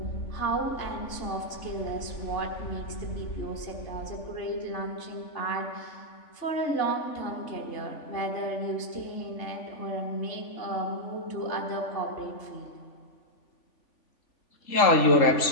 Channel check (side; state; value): right; late; 3.5 ms